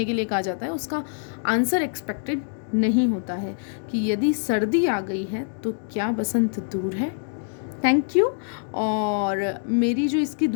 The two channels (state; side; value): silent; right; 62 dB below the other